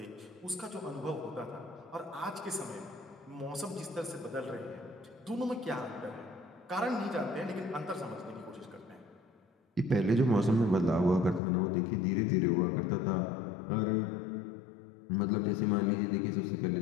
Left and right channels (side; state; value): right; drops out; at 11.4 s